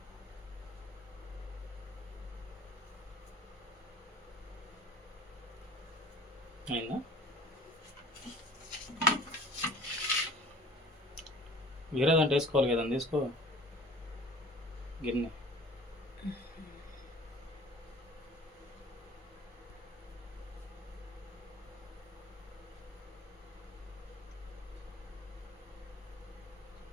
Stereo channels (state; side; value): normal; both; correlation 0.47